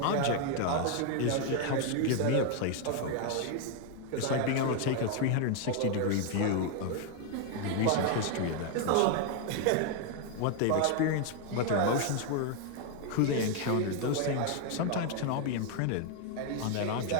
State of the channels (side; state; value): both; different; correlation 0.01